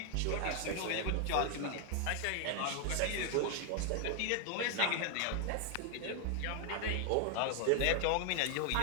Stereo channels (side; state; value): both; different; correlation 0.00